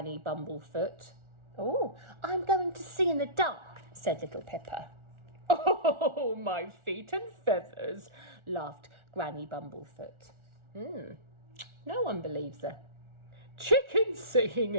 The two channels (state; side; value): late; left; 1.4 ms